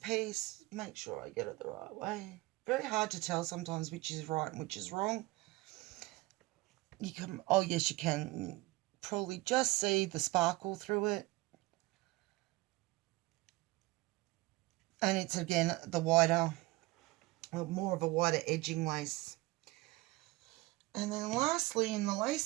Make sure I get it the right way. Very hard to tell sometimes which is right and which is wrong. You can, oh yes, you can probably just see the sparkle through it. And it's, again, the wider, more of a wider edging lace. And then lastly, in the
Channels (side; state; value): left; quieter; 20.6 dB